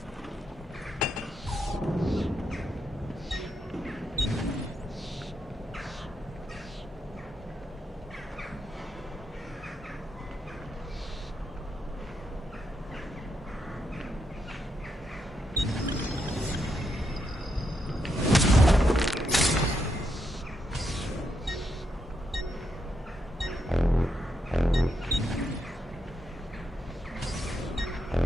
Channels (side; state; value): both; normal; correlation 0.81